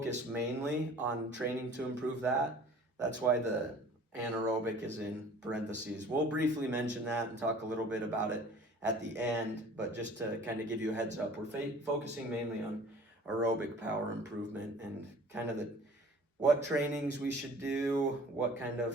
mainly on training to improve that. That's why the anaerobic is in parentheses. We'll briefly mention that and talk a little bit about it at the end, but just to kind of give you a heads up, we're focusing mainly on aerobic power improvement and kind of what trainings we should do, what kind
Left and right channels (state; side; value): normal; both; correlation 0.48